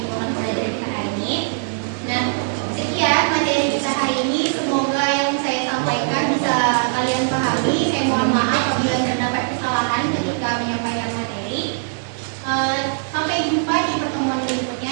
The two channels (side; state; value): left; silent; 65 dB below the other